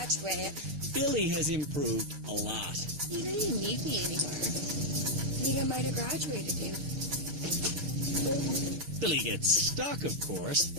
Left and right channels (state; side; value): late; left; 6.6 ms